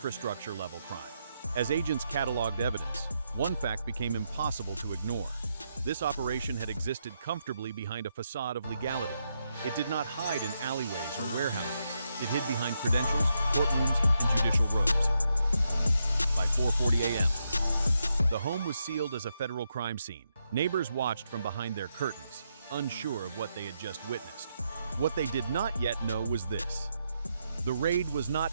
crime. As agents cataloged evidence, one fact became impossible to ignore. This operation had existed comfortably behind a facade of legality. It did not hide in alleyways or warehouses. It hid behind credentials, courtrooms, and judicial robes. By 4:40 a.m., the home was sealed as a federal crime scene. Neighbors watched from behind their curtains, unsure of what they had just witnessed. What they did not yet know was this. The raid was not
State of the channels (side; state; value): both; inverted; correlation -0.81